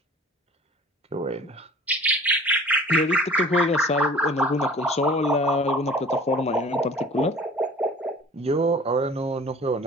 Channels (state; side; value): normal; both; correlation 0.46